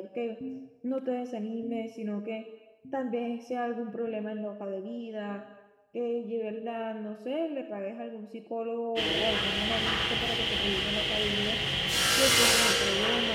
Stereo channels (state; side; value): identical; both; correlation 1.00